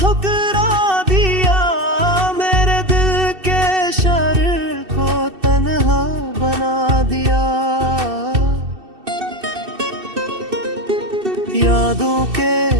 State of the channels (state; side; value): late; left; 2.6 ms